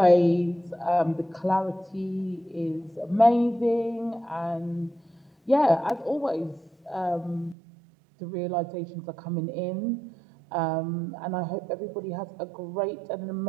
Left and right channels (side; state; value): left; drops out; at 7.6 s